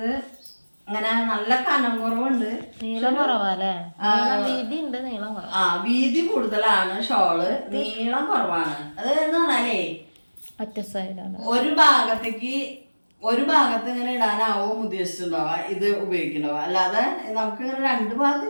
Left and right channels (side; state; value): both; inverted; correlation -1.00